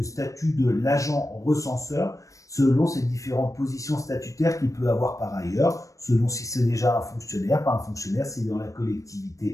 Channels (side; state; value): right; late; 0.16 ms